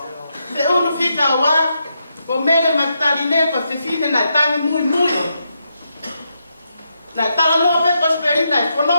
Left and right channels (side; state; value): both; inverted; correlation -0.82